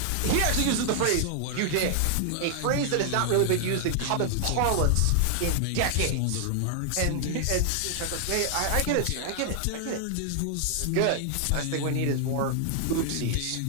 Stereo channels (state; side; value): different; both; correlation 0.00